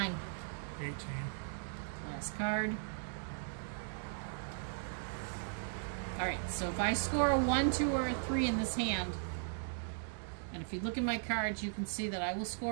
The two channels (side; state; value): left; silent; digital silence